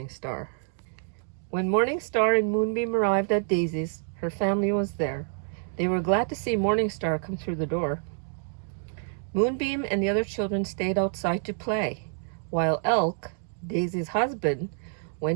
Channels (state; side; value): silent; left; 60 dB below the other